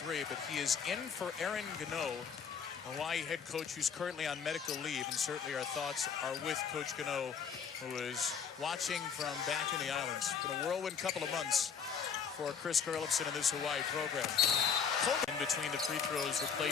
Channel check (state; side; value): quieter; right; 6.7 dB